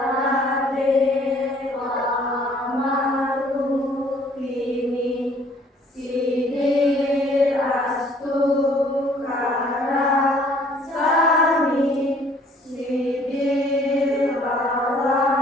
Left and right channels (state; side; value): normal; both; correlation 0.58